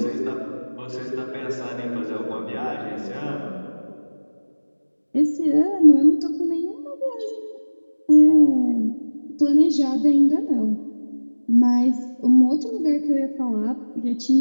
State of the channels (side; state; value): both; inverted; correlation -1.00